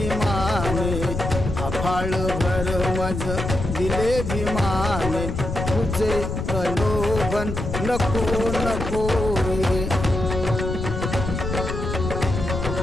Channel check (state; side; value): noise; left; rumble, 4 dB below the sound